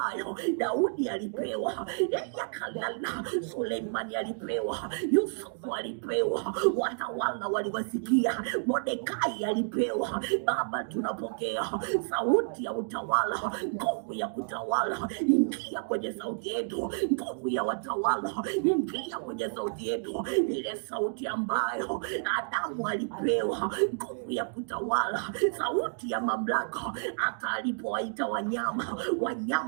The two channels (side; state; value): left; silent; digital silence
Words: Daudi alipewa, yakalala Suleimani alipewa, Yusufu alipewa, watawala waliwasikia, Mordekai alipewa. Baba, tunapokea sauti ya utawala, nguvu ya kutawala. Ingia kwenye sauti yetu, nguvu ya watawala. Ingia kwenye sauti yetu, ile sauti ambayo Adamu alipewa, nguvu ya kutawala, sauti ya mamlaka. Hata alipowaita